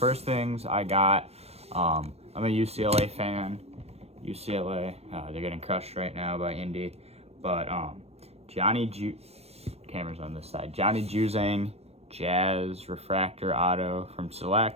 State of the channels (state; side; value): late; left; 0.30 ms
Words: things I got, I'm a UCLA fan. UCLA, they're getting crushed right now by Indy, but camera's on this side. Johnny Juzang Jazz Refractor Auto from